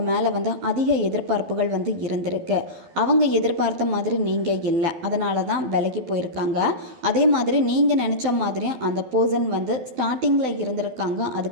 மேலே அதிக எதிர்பார்ப்புகள் இருந்திருக்கு. அவங்க எதிர்பார்த்த மாதிரி நீங்கள் இல்லை, அதனால தான் விலகி போயிருக்காங்க. அதே மாதிரி நீங்கள் நினச்ச மாதிரி அந்த பர்சன் ஸ்டார்டிங்கில் இருந்திருக்காங்க,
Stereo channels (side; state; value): left; late; 12 ms